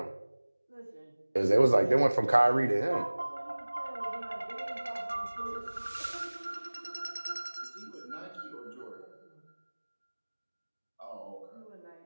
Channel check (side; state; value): both; inverted; correlation -1.00